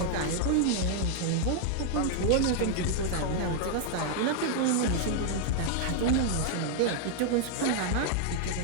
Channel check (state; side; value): different; both; correlation 0.00